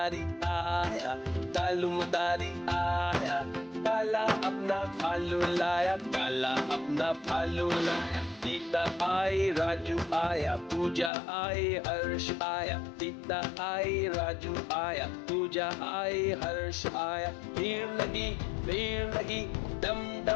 आया, कालू मदारी आया, काला अपना भालू लाया, काला अपना भालू लाया। सीता आई, राजू आया, पूजा आई, हर्ष आया। सीता आई, राजू आया, पूजा आई, हर्ष आया। भीड़ लगी, डम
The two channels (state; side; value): drops out; right; at 11.1 s